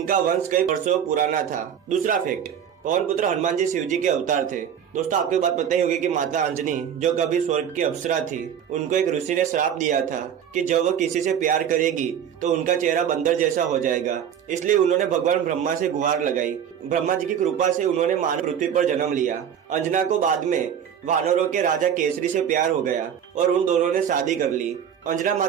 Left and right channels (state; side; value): quieter; left; 8.7 dB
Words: वंश कई वर्षों पुराना था। दूसरा फैक्ट, पवन पुत्र हनुमान जी शिव जी के अवतार थे। दोस्तों आपको बात पता ही होगी कि माता अंजनी जो कभी स्वर्ग की अप्सरा थी, उनको एक ऋषि ने श्राप दिया था कि जब वो किसी से प्यार करेगी तो उनका चेहरा बंदर जैसा हो जाएगा। इसलिए उन्होंने भगवान ब्रह्मा से गुहार लगाई। ब्रह्मा जी की कृपा से उन्होंने मानव पृथ्वी पर जन्म लिया। अंजना को बाद में वानरों के राजा केसरी से प्यार हो गया और उन दोनों ने शादी कर ली। अंजना